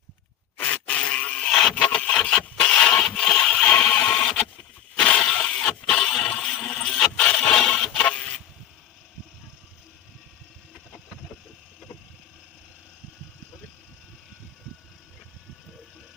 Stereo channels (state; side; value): quieter; right; 11.1 dB